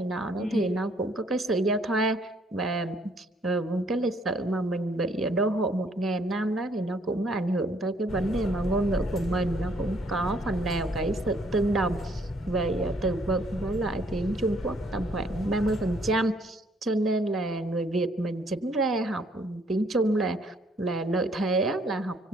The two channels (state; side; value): normal; both; correlation 0.65